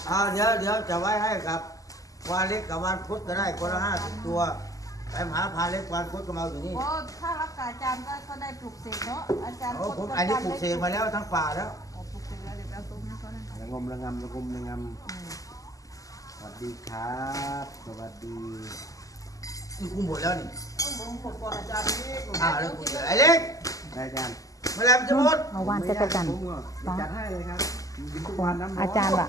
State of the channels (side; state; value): right; late; 0.17 ms